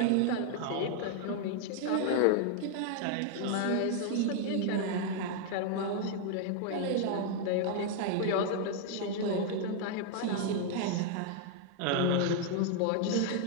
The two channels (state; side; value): different; both; correlation 0.00